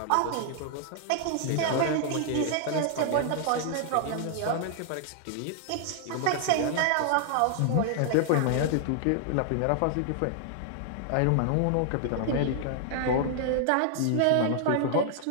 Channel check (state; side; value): different; both; correlation 0.00